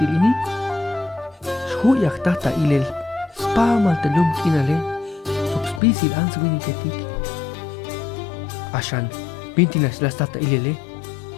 Huyak tata ilel spamal telum kinale subspisil answiniketik Ashan pintinas las tata ilele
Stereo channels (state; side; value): drops out; right; at 5.8 s